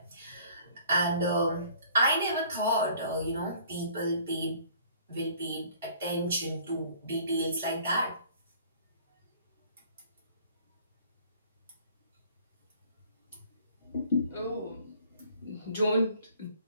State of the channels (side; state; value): both; inverted; correlation -0.54